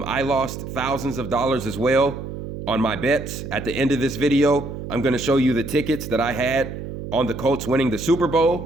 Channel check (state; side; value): noise; right; hum, 8 dB below the sound